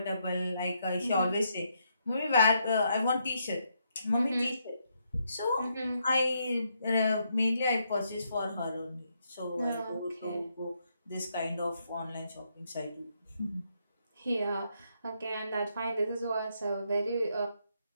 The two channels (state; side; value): inverted; both; correlation -0.77